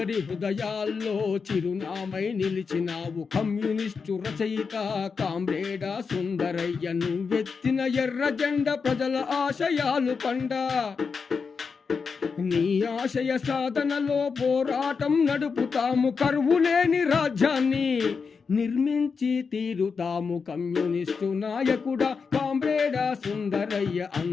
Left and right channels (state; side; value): quieter; right; 5.3 dB